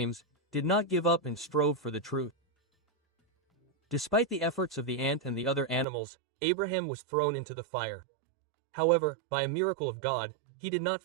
did not give up and strove for the truth. Despite the efforts of the ant and the other animals, Abraham was thrown into the fire. However, by a miracle of God, he did not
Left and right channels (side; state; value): left; drops out; at 5.9 s